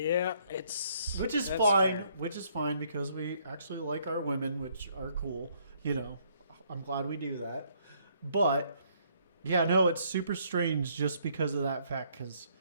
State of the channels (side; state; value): both; inverted; correlation -0.67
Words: it's Which is that's fine. fair. Which is fine because we actually like our women, which are cool. I'm glad we do that. But yeah, no, it's super strange just because of that fact. Because